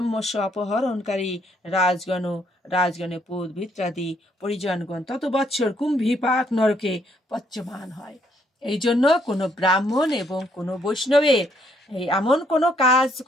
অপহরণকারী রাজগণে পুত ভিত্রাদি পরিজনগণ তত বৎসর কুম্ভীপাক নরকে পচ্যমান হয়। এই জন্য কোনো ব্রাহ্মণ এবং কোনো বৈষ্ণবের এমন কোনো কাজ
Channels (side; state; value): both; normal; correlation 0.70